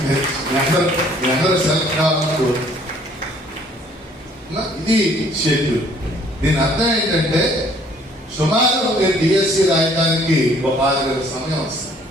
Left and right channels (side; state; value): both; normal; correlation 0.59